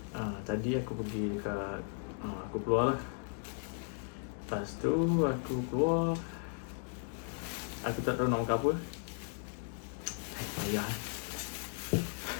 Tadi aku pergi dekat aku keluar lah. Lepas tu aku keluar, aku tak tahu nak makan apa. Payah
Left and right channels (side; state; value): right; silent; 54 dB below the other